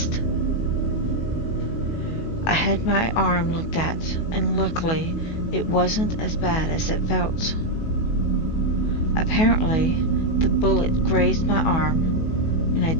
I had my arm looked at, and luckily it wasn't as bad as it felt. Apparently, the bullet grazed my arm, and I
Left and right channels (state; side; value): late; right; 19 ms